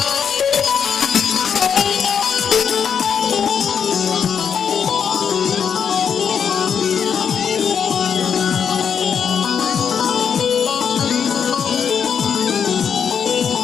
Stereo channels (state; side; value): quieter; right; 7.3 dB